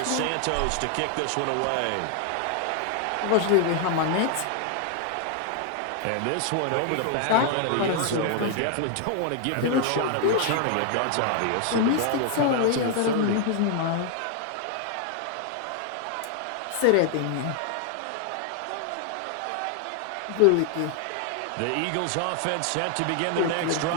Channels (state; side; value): different; both; correlation 0.00